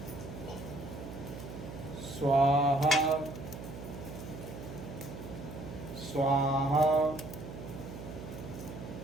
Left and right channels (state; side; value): noise; right; hum, 10 dB below the sound